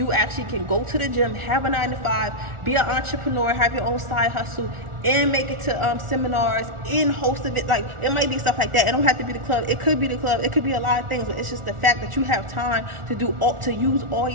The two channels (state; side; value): late; left; 1.4 ms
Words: actually can go to the gym, have a 9 to 5, be an entrepreneur, have your own side hustle, and make it to seminars, and host of it. Like, it might be stuff like that. It don't have to be the club. It could be the club. It could be a lot of things, but it's just the fact that you have time to use all